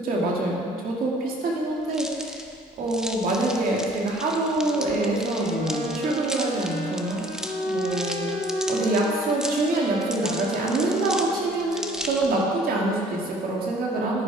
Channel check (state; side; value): normal; both; correlation 0.55